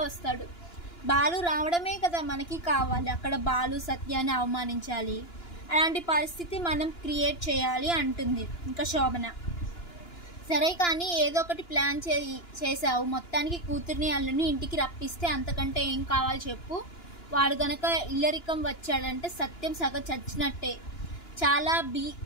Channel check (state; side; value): late; right; 2.9 ms